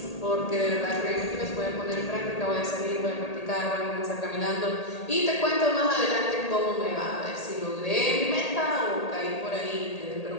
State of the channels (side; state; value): right; late; 1.8 ms